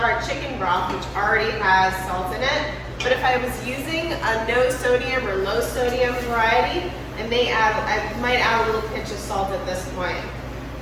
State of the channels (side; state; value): both; identical; correlation 1.00